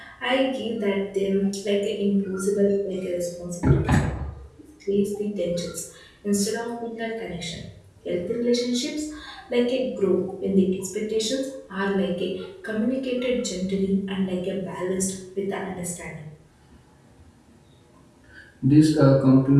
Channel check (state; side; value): identical; both; correlation 1.00